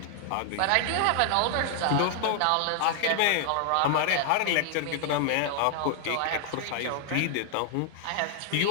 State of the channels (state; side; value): different; both; correlation 0.00